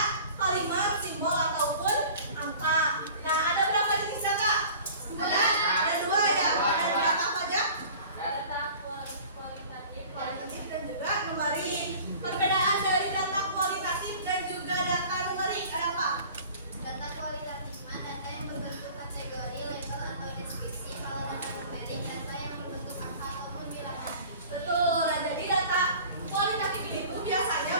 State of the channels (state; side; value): inverted; both; correlation -0.44